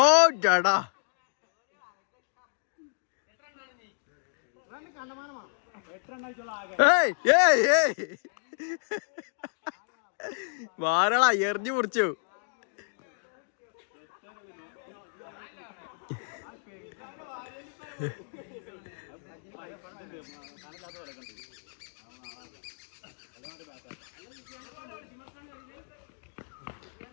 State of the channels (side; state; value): right; silent; digital silence